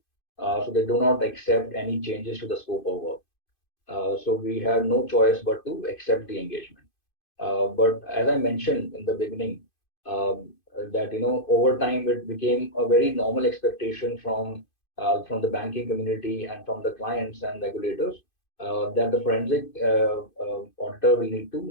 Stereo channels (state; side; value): late; right; 2.5 ms